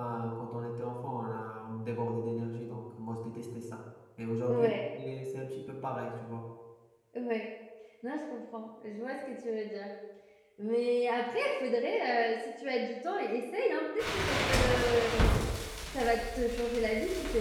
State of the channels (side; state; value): both; identical; correlation 1.00